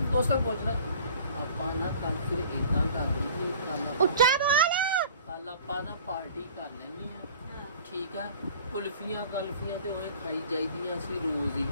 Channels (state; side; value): inverted; both; correlation -0.48